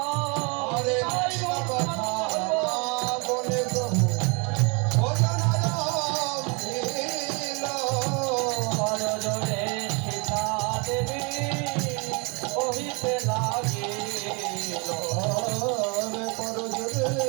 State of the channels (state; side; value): quieter; left; 31.6 dB